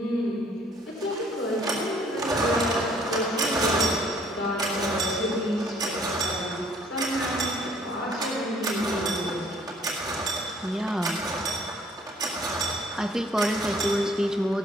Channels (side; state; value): both; normal; correlation 0.60